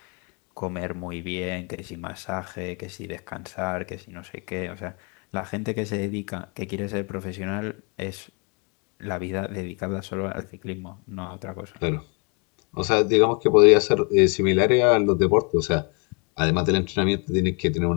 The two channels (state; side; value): quieter; right; 35.0 dB